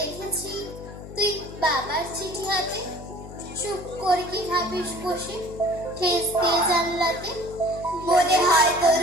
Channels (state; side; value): noise; left; hum, 13 dB below the sound